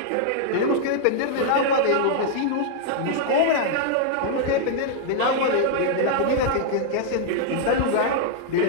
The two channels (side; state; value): both; different; correlation -0.01